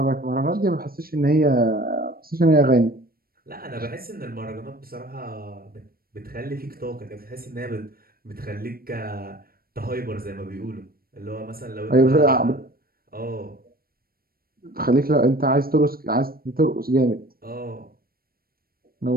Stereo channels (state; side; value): late; left; 0.43 ms